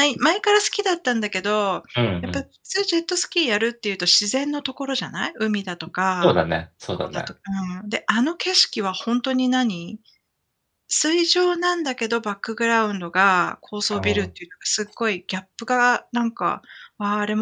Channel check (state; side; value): identical; both; correlation 1.00